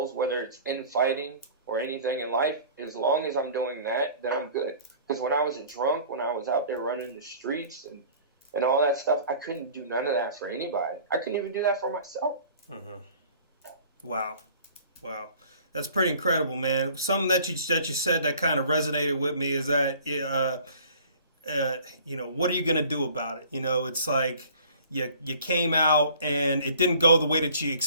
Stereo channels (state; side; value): inverted; both; correlation -0.49